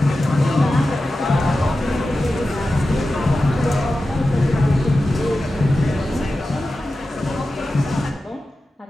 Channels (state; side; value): normal; both; correlation 0.93